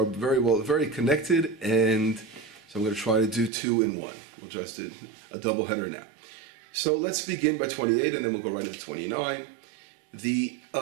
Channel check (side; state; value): left; drops out; at 3.5 s